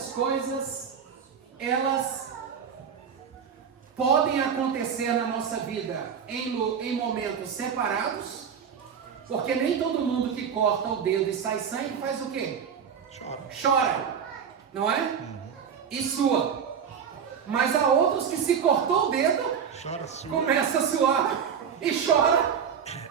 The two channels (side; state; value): left; quieter; 7.3 dB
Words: coisas, elas podem acontecer na nossa vida em momentos separados, porque nem todo mundo que corta o dedo e sai sangue faz o quê? Chora, não é? E sua. Mas há outros que se cortou o dedo, começa a suar e chora